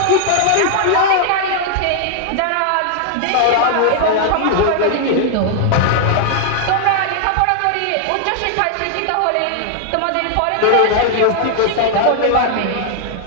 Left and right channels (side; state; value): both; different; correlation 0.00